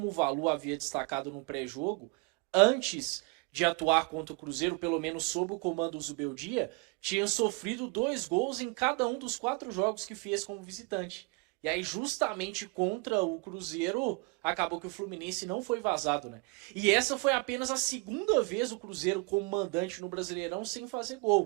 o Valu havia destacado no pré-jogo, antes de atuar contra o Cruzeiro, pelo menos sob o comando do Zubeldia, tinha sofrido 2 gols em cada um dos 4 jogos que fez como visitante. E aí, justamente contra o Cruzeiro, acabou que o Fluminense não foi vazado, né? E essa foi apenas a 2ª vez o Cruzeiro como mandante no Brasileirão sem fazer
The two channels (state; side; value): quieter; left; 29.3 dB